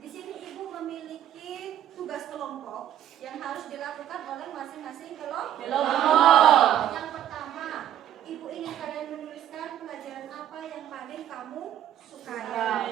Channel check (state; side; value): quieter; left; 11.1 dB